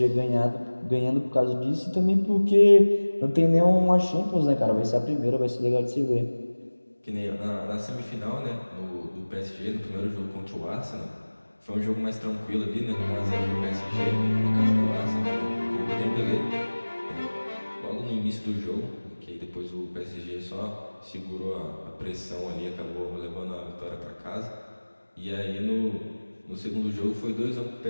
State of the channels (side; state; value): both; inverted; correlation -1.00